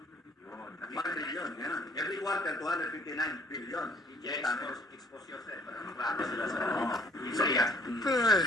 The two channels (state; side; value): normal; both; correlation 0.58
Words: 1 billion. Yan. Every quarter, 259 billion. Yes, expose yourself. Para maklaro sila sa Isaiah.